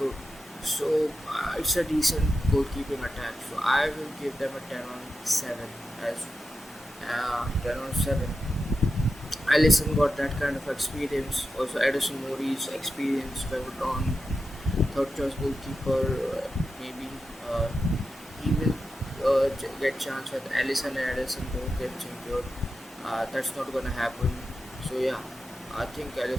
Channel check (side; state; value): both; normal; correlation 0.90